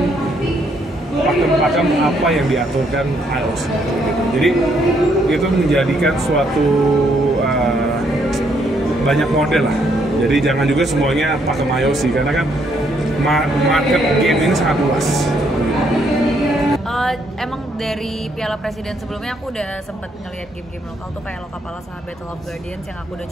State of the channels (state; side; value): normal; both; correlation 0.71